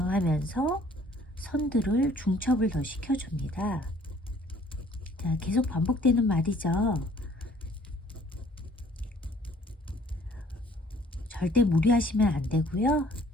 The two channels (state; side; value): normal; both; correlation 0.57